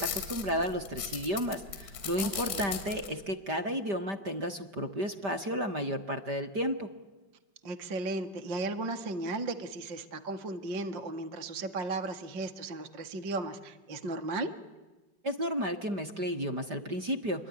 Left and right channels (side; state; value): left; late; 5.1 ms